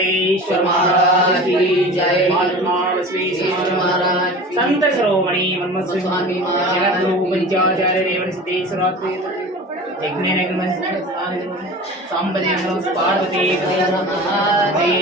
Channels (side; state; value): both; normal; correlation 0.36